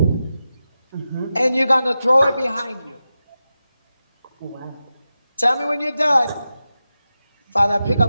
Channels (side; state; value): both; inverted; correlation -0.92